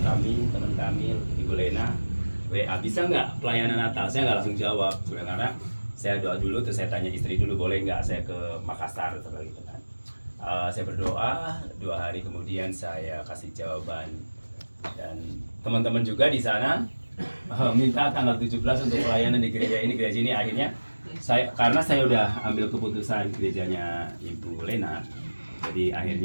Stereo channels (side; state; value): both; inverted; correlation -1.00